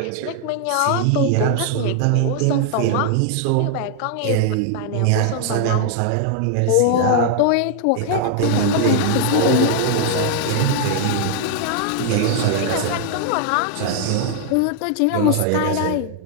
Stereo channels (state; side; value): different; both; correlation 0.00